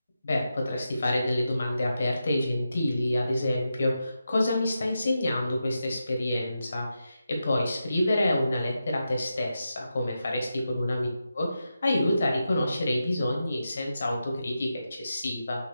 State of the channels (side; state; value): both; inverted; correlation -0.88